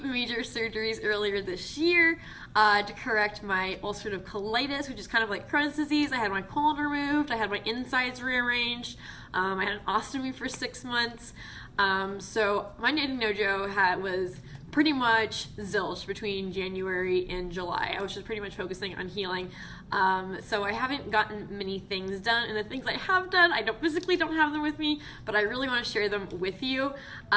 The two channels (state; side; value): identical; both; correlation 1.00